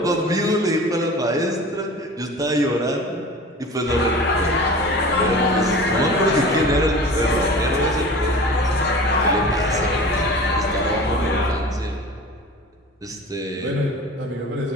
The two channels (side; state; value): both; normal; correlation 0.38